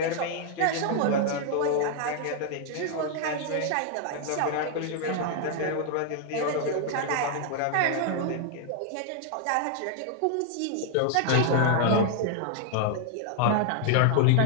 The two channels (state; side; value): different; both; correlation 0.00